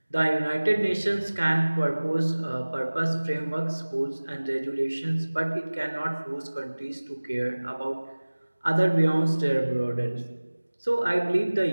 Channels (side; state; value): both; inverted; correlation -1.00